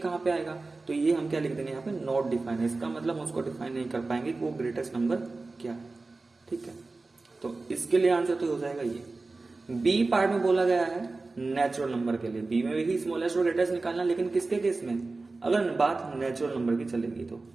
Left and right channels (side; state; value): left; quieter; 3.5 dB